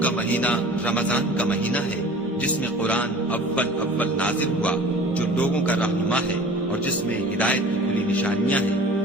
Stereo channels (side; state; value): both; normal; correlation 0.43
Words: کا مہینہ رمضان کا مہینہ ہے جس میں قرآن اول نازل ہوا، جو لوگوں کا رہنما ہے اور جس میں ہدایت کی کھلی نشانیاں